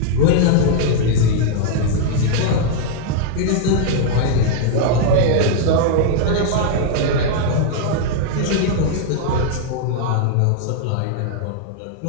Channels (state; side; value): different; both; correlation 0.00